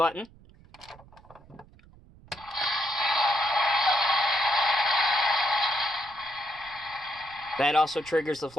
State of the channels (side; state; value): right; noise; rumble, 24 dB below the sound